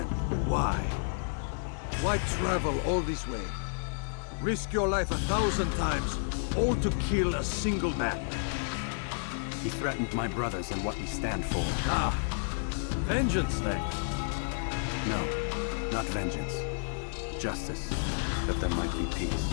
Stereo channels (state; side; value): silent; right; digital silence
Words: Why? Why travel all this way? Risk your life 1,000 times, all to kill a single man. He threatened my brothers and what we stand for. Ah, vengeance then. No, not vengeance. Justice, that there might be peace.